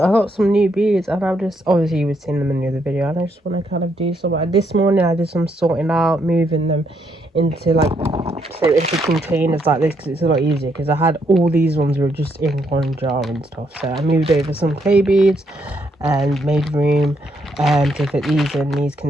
got some new beads, and I've just, obviously you were seeing them in the other video, and I just want to kind of do some. This morning I did some sorting out, moving them into like, so into containers like this, because it's a lot easier, because I had all these ones were just in one jar and stuff. So I moved over some clay beads and made room to fit these in these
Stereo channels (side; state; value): both; normal; correlation 0.75